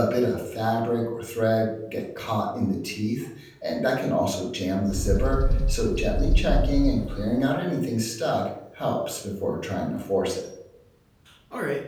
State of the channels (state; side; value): identical; both; correlation 1.00